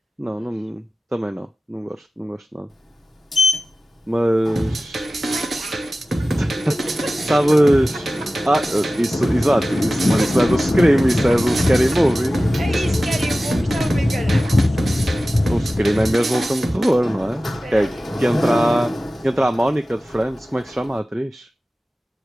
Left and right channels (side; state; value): both; normal; correlation 0.96